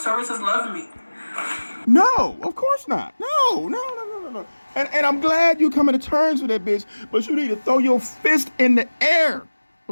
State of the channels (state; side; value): inverted; both; correlation -1.00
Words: services love me. No, of course not. No. And I'm glad you coming to terms with that, bitch. But you need to throw your fist in the air,